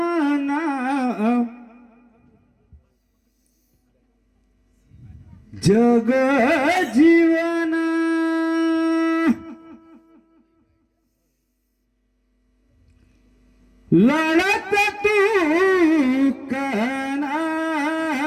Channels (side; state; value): both; identical; correlation 1.00